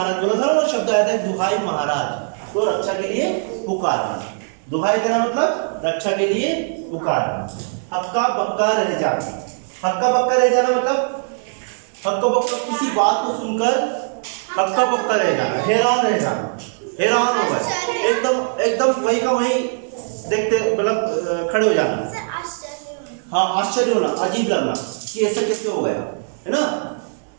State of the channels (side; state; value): left; silent; digital silence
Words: बोला था ना, वो शब्द आया था दुहाई महाराज, तो रक्षा के लिए पुकारना। दुहाई देना मतलब रक्षा के लिए पुकारना। हक्का बक्का रह जाना। हक्का बक्का रह जाना मतलब, हक्का बक्का किसी बात को सुनकर हक्का बक्का रह जाना, हैरान रह जाना, हैरान हो गए, एकदम एकदम वही का वही देखते, मतलब खड़े हो जाना। हाँ, आश्चर्य होना, अजीब लगना कि ऐसा कैसे हो गया, है ना।